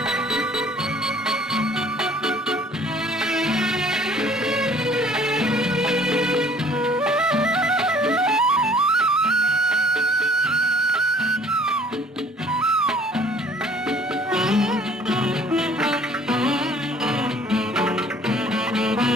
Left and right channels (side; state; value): both; normal; correlation 0.55